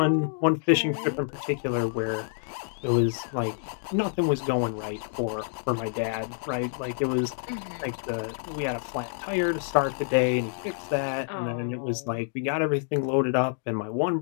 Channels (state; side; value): silent; right; digital silence